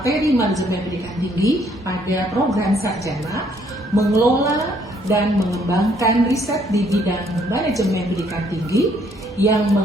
manajemen pendidikan tinggi pada program sarjana, mengelola dan mengembangkan riset di bidang manajemen pendidikan tinggi yang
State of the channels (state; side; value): normal; both; correlation 0.66